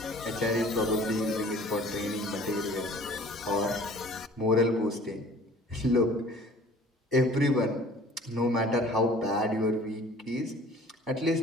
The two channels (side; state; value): both; normal; correlation 0.49